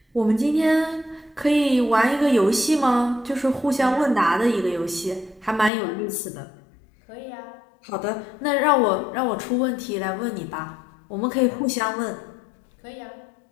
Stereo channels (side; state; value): right; drops out; at 5.7 s